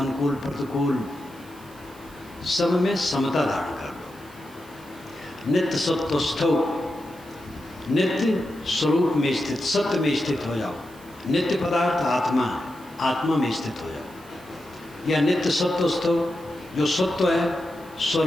प्रतिकूल, सब में समता धारण कर लो। नित्य सत्वस्थौ, नित्य स्वरूप में स्थित, सत्य में स्थित हो जाओ। नित्य पदार्थ आत्मा, आत्मा में स्थित हो जाओ। या नित्य सत्वस्थौ, जो सत्व है,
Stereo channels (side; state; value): right; noise; hiss, 24 dB below the sound